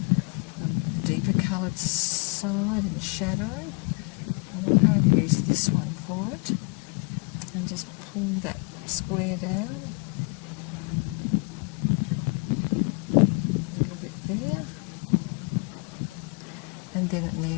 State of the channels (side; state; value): right; quieter; 30.8 dB